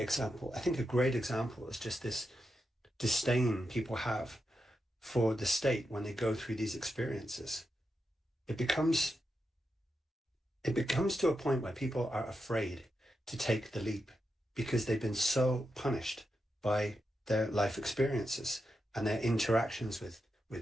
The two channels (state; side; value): normal; both; correlation 0.87